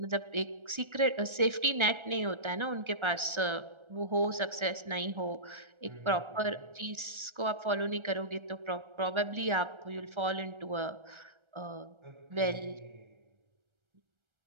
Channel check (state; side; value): late; left; 1.3 ms